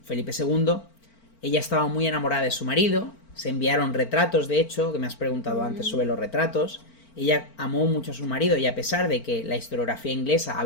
Felipe II. Ella estaba muy enamorada de su marido, se enviaron retratos, de hecho, que me has preguntado antes sobre los retratos. Ella amó mucho a su marido y a pesar de que la historiografía inglesa ha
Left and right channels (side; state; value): right; late; 4.4 ms